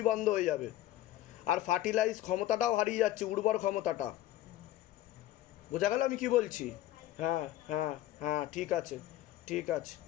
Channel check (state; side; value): quieter; right; 14.3 dB